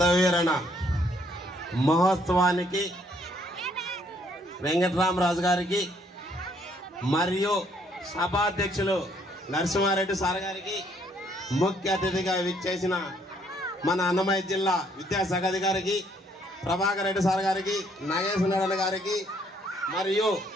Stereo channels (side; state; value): both; normal; correlation 0.67